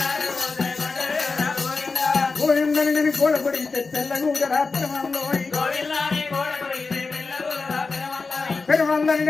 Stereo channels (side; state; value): right; quieter; 4.2 dB